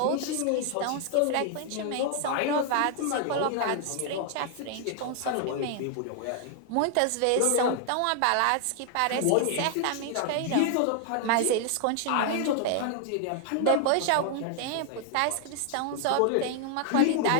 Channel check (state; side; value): different; both; correlation 0.00